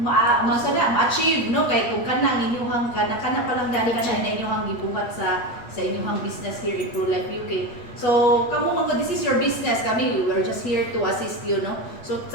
ma-achieve, no? Kay kung kana inyuhang kana pa lang dali kana inyuhang gibuhat sa inyuhang business here in ProLife UK. So, kamo mga this is your business, kami we were just here to assist you, no? So,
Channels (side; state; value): right; late; 8.3 ms